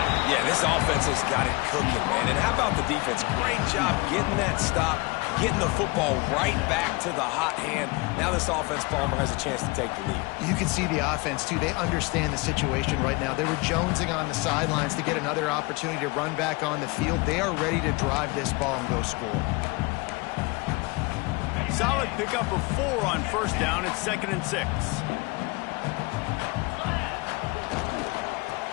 Yeah, this offense has got it cooking, man. And how about the defense? Great job getting that stop, getting the football right back to the hot hand. Now this offense, Palmer, has a chance to take the lead. You can see the offense, too. They understand the situation right now. They were jonesing on the sidelines to get another opportunity to run back on the field. They are ready to drive this ball and go score. Solid pickup of 4 on first down. It's 2nd and 6.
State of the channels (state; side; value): quieter; right; 25.8 dB